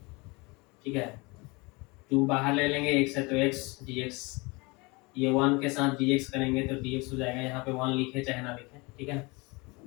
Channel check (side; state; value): right; quieter; 26.4 dB